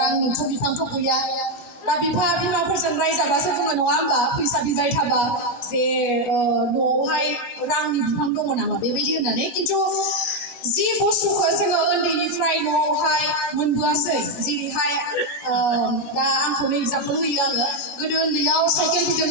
बिफांथ' गैया दा बिमाफोरजों रायजाबासो बुङो नङा होमबा फैसा बिबाय थाबा जे न'आवहाय रांनि बिफां दङ नामा बेबायदि होननानै खिन्थु जि बुस्थुखौ जोङो उन्दैनिफ्राय न'आवहाय मोनबोआसै जेरैहाय दा आंखौनो एग्जाम्पल होयो आङो गोदो उन्दैयाव साइकेल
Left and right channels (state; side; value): late; right; 17 ms